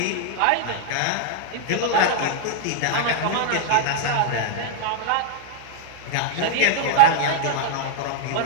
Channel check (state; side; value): different; both; correlation 0.00